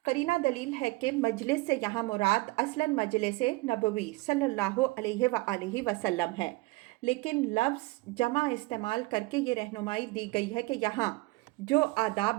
قرینہ دلیل ہے کہ مجلس سے یہاں مراد اصلاً مجلس نبوی صلی اللہ علیہ وآلہ وسلم ہے، لیکن لفظ جمع استعمال کر کے یہ رہنمائی دی گئی ہے کہ یہاں جو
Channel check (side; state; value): left; quieter; 22.5 dB